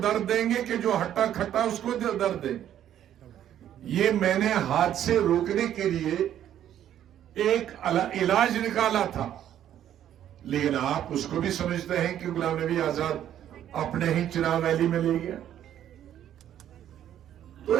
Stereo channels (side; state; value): left; quieter; 10.9 dB